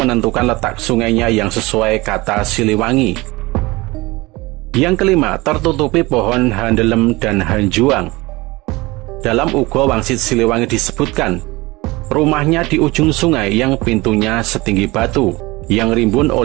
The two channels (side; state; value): left; quieter; 22.0 dB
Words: letak sungainya yang sesuai kata Siliwangi. Yang kelima, tertutupi pohon handelem dan hanjuang. Dalam Ugo Wangsit Siliwangi disebutkan, rumahnya di ujung sungai yang pintunya setinggi batu, yang rimbun